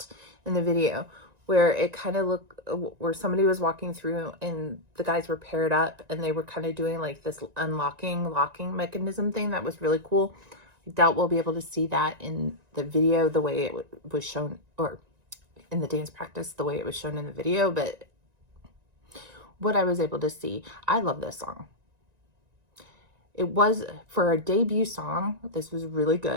in the video where it kind of looked, where somebody was walking through and the guys were paired up and they were kind of doing like this locking mechanism thing that was really cool. I doubt we'll be able to see that in the video the way it was shown, or in the dance practice the way it was shown in the video, but what I was able to see, I love this song. It was, for a debut song, this was really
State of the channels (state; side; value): late; left; 1.9 ms